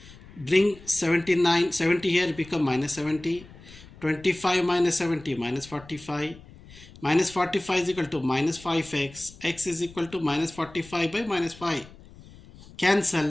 Bring 79, 70 here, become minus 70. 25 minus 70, minus 45. Minus 45 is equal to minus 5x. X is equal to minus 45 by minus 5.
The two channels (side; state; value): left; noise; rumble, 20 dB below the sound